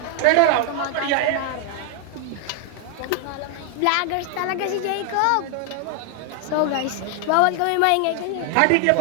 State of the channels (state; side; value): different; both; correlation 0.00